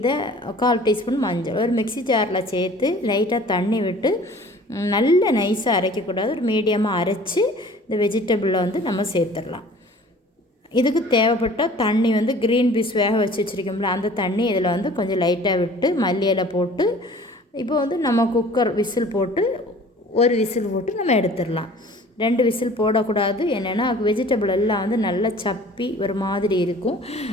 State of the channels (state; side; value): normal; both; correlation 0.48